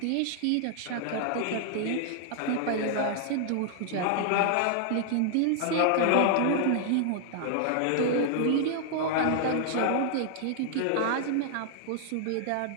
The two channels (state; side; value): different; both; correlation 0.00